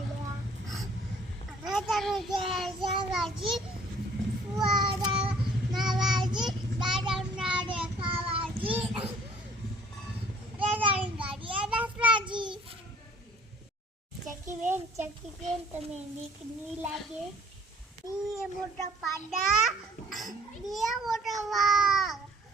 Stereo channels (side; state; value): both; normal; correlation 0.56